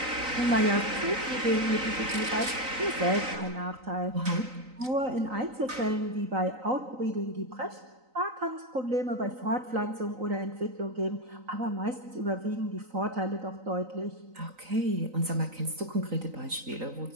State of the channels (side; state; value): left; late; 3.9 ms